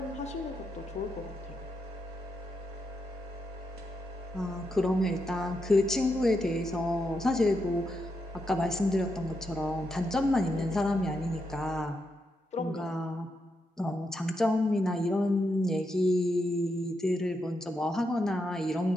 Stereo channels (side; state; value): both; normal; correlation 0.83